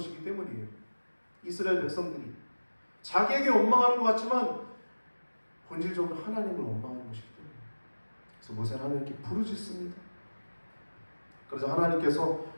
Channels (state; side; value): inverted; both; correlation -1.00